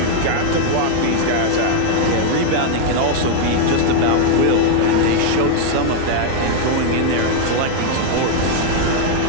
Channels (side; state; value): both; different; correlation 0.00